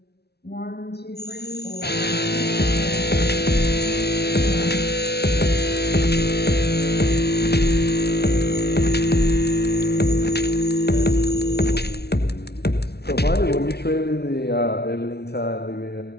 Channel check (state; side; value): late; right; 0.48 ms